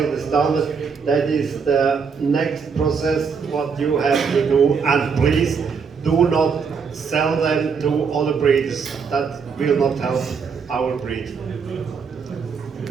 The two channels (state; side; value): quieter; left; 5.8 dB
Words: to standard, that is the next process what you have to do, and please do not sell them to other breeders. That will not help our breed.